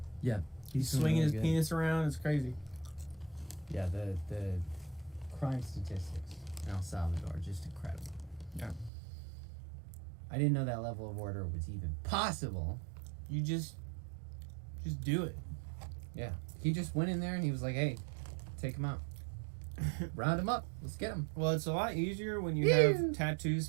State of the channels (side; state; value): left; drops out; at 8.9 s